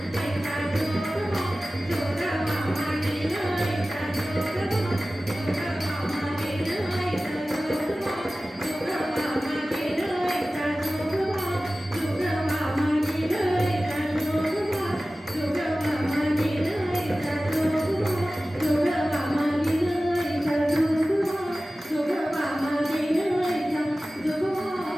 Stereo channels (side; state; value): both; normal; correlation 0.96